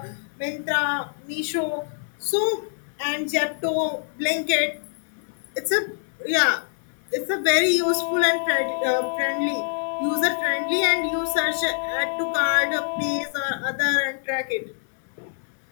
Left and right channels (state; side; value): silent; right; 62 dB below the other